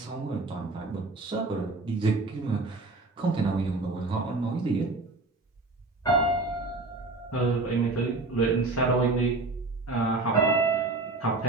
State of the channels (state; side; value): quieter; left; 3.2 dB